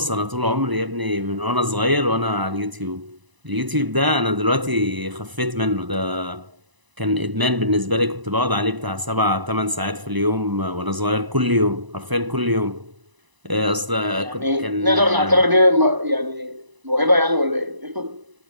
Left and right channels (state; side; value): late; left; 1.0 ms